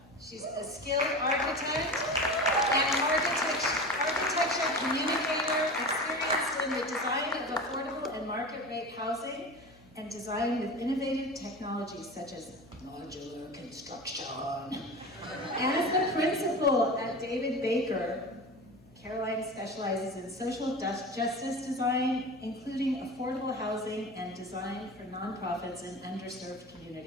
She's a skilled architect and architecture communicator, experienced in the design of affordable and market rate housing, and design with innovative technologies such as modular construction. As the principal at David Baker, Caroline specializes in social justice design, including affordable housing and design for nonprofits in underserved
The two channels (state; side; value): noise; left; hum, 26 dB below the sound